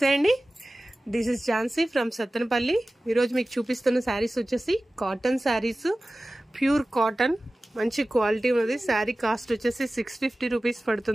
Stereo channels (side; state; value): both; normal; correlation 0.96